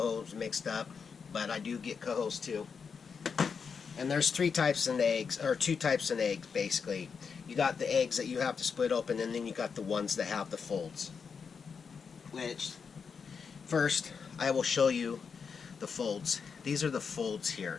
mixed up, but I do get cohos too. And there's 3 types in eggs, or 2 types in eggs basically. You got the eggs that you have to split open, and then you got the ones that have the folds. Which, first, I will show you the folds. These are the folds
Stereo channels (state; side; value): quieter; right; 5.9 dB